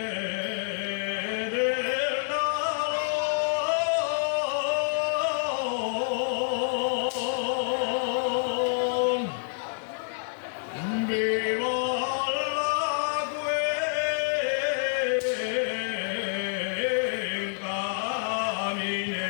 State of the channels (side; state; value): right; silent; 58 dB below the other